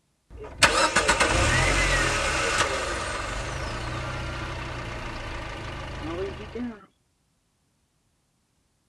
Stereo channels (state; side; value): identical; both; correlation 1.00